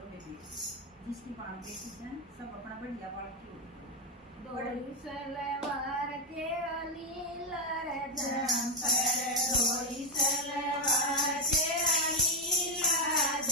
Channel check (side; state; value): both; normal; correlation 0.04